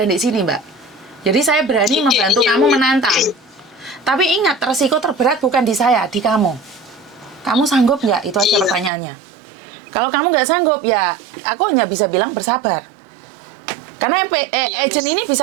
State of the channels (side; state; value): left; drops out; at 8.9 s